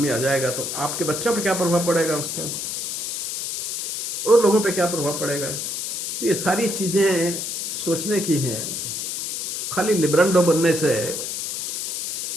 आ जाएगा, तो आपके बच्चों पे क्या प्रभाव पड़ेगा उसका, और लोगों पे क्या प्रभाव पड़ेगा। तो ये सारी चीजें सोचने की हैं। खाली लिब्रांडो बनने से,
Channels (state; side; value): noise; left; hiss, 4 dB below the sound